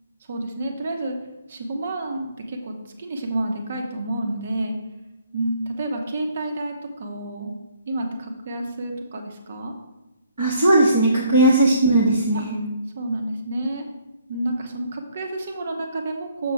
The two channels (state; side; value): inverted; both; correlation -0.64